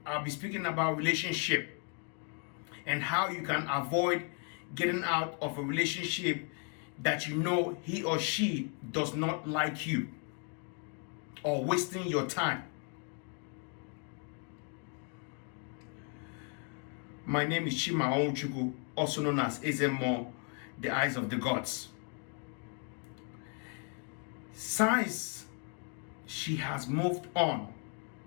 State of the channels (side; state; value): right; quieter; 38.1 dB